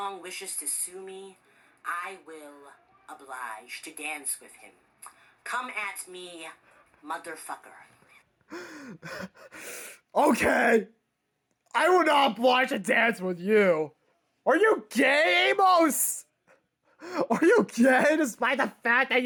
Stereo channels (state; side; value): identical; both; correlation 1.00